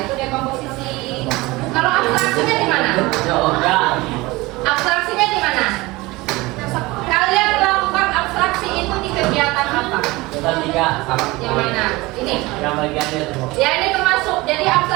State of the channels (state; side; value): quieter; left; 21.6 dB